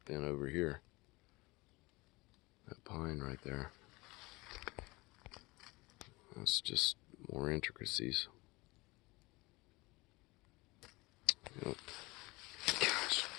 been over here. That pine right there. That's just more intricacies. Yep.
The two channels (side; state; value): right; quieter; 23.2 dB